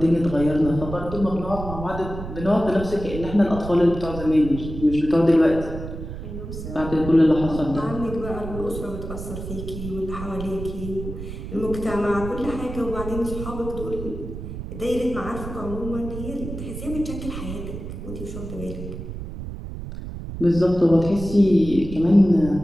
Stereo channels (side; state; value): right; noise; rumble, 9 dB below the sound